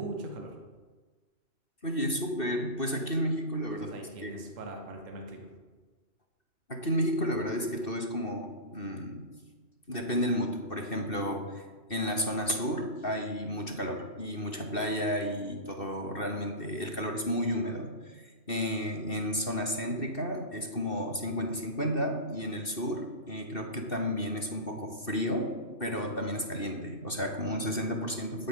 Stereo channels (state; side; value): late; right; 2.6 ms